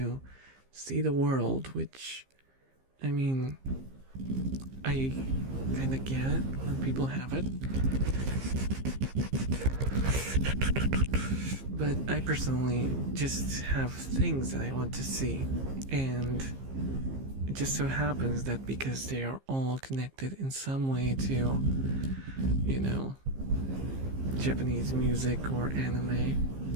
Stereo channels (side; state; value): left; late; 15 ms